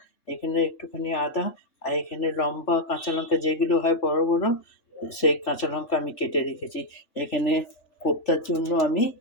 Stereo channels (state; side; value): late; right; 3.4 ms